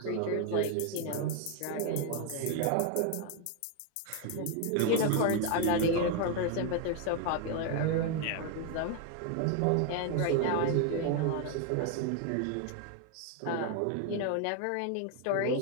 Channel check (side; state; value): both; different; correlation 0.01